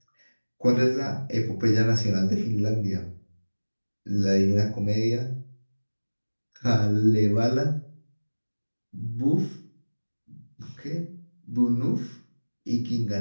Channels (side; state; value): both; inverted; correlation -1.00